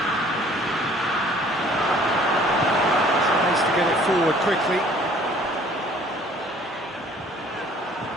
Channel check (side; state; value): both; normal; correlation 0.55